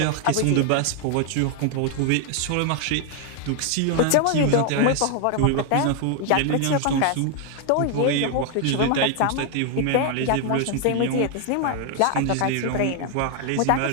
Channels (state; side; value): different; both; correlation 0.00